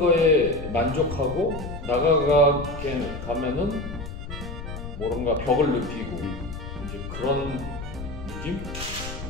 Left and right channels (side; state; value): left; noise; rumble, 9 dB below the sound